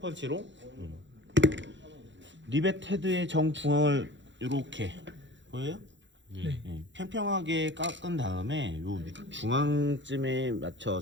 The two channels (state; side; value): late; left; 0.54 ms